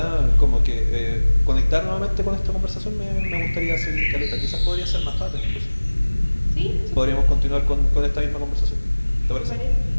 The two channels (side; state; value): both; inverted; correlation -1.00